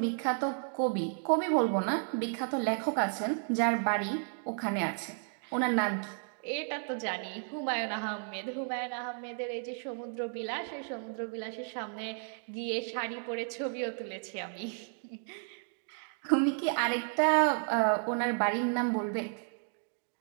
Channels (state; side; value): silent; left; 56 dB below the other